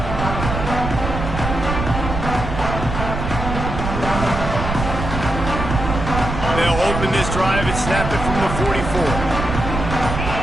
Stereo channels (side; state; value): right; noise; rumble, 4 dB below the sound